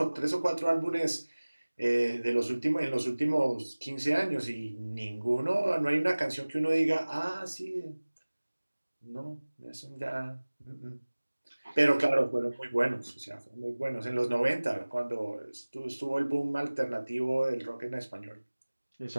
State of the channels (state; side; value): inverted; both; correlation -1.00